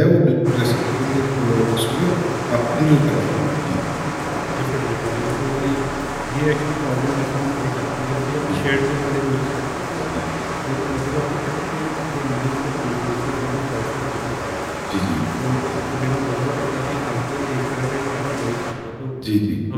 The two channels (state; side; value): identical; both; correlation 1.00